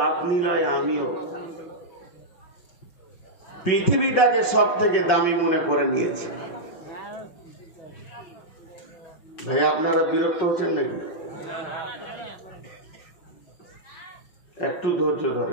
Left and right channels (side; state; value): right; late; 5.4 ms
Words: আপনি নয়, আমিও পৃথিবীটাকে সব থেকে দামি মনে করে নিয়েছি। ভাই আপনারা বিরক্ত হচ্ছেন নাকি? একটু ধৈর্য